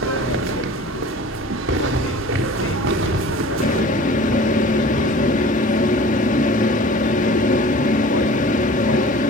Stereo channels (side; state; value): both; normal; correlation 0.43